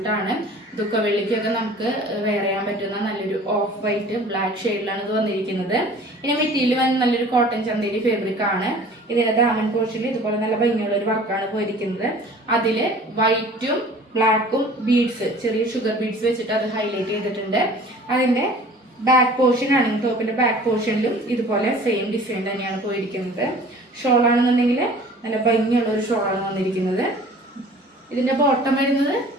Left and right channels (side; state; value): both; normal; correlation 0.47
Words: ദുഃഖവെള്ളിക്കൊക്കെ നമുക്ക് വെയർ ചെയ്യാൻ പറ്റുന്ന നല്ലൊരു ഓഫ് വൈറ്റ് ബ്ലാക്ക് ഷെയ്ഡിലാണ് ഇത് വന്നിരിക്കുന്നത്. ഇനി മെറ്റീരിയൽ വന്ന് നല്ലൊരു കോട്ടൺ ചന്തേരി ഫാബ്രിക് ആണ്. ഇതിന്റെ ദാമൻ പോർഷനിൽ ഇതുപോലെ നല്ല ഭംഗിയുള്ള ഒരു വർക്കാണ് പോയിരിക്കുന്നത്. അതില് വൈറ്റും ബ്ലാക്കും ബീഡ്സ്, ചെറിയ ഷുഗർ ബീഡ്സ് വെച്ചിട്ട് അത് ഹൈലൈറ്റ് ചെയ്തിട്ടുണ്ട്. അതിന്റെ ബാക്ക് പോർഷൻ ആണെങ്കിൽ ടോപ്പിന്റെ ബാക്ക് പോർഷനിലും ഇതുപോലെ സെയിം ഡിസൈൻ തന്നെയാണ് പോയിരിക്കുന്നത്. ഷോൾ ആണെന്നുണ്ടെങ്കിൽ നല്ല ഭംഗിയുള്ള ഒരു ഷോളാണ് വന്നിരിക്കുന്നത്. ഇതിന്റെ ബോട്ടം വരുന്നത്